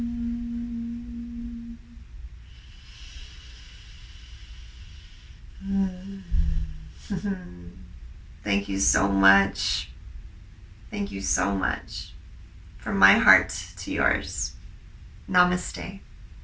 Thank you so much. Thank you so much. From my heart to yours. Namaste.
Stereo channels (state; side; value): identical; both; correlation 1.00